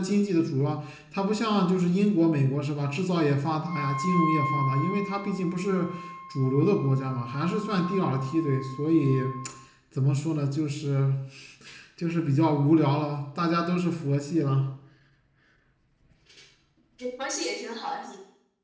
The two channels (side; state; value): both; identical; correlation 1.00